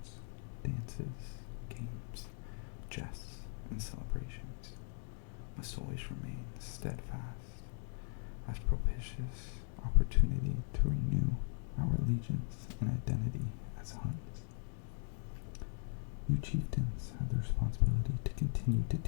dances, games, jests, and celebrations must always remain steadfast as propitious opportunity to renew our allegiance and identity as Huns. You chieftains have the responsibility to continue to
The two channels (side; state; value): right; silent; 52 dB below the other